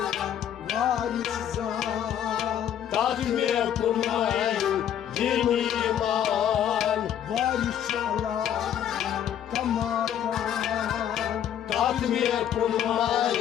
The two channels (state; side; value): quieter; right; 9.9 dB